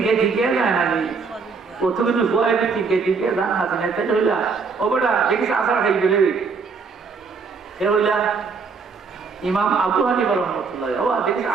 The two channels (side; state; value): left; quieter; 5.0 dB